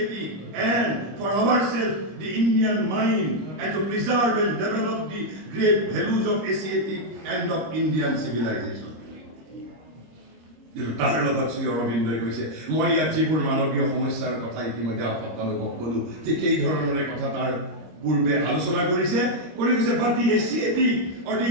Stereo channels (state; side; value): late; left; 25 ms